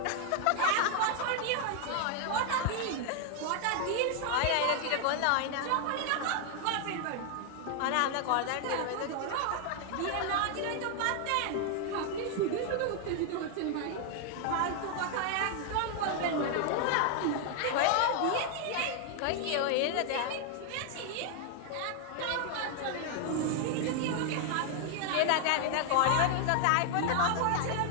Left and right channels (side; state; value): both; different; correlation 0.00